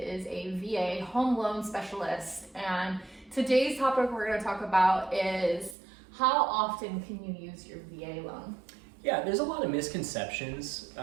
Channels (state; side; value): drops out; left; at 5.8 s